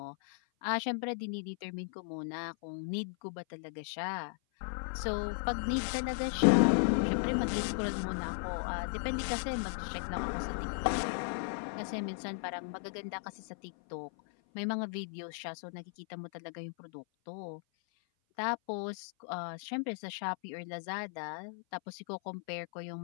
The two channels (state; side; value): silent; right; 54 dB below the other